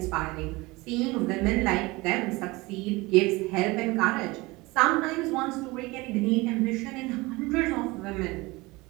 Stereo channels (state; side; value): quieter; left; 22.5 dB